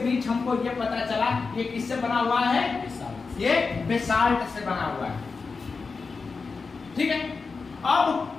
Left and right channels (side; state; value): right; quieter; 4.6 dB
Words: बीच हमको ये पता चला ये किससे बना हुआ है? ये बेसाल्ट से बना हुआ है, ठीक है? अब